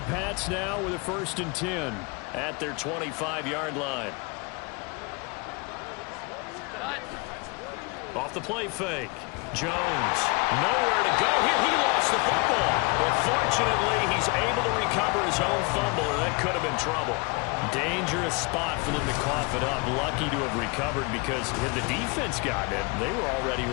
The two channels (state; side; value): quieter; right; 29.4 dB